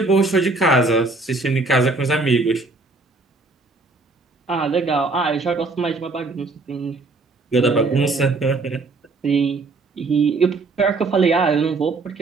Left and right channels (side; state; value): left; quieter; 3.5 dB